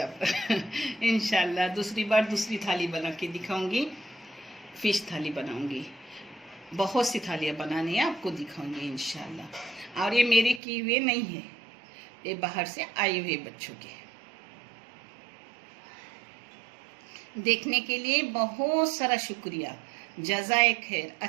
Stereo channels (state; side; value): drops out; left; at 10.6 s